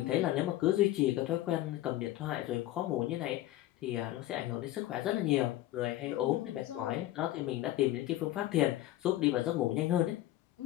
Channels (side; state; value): right; quieter; 15.1 dB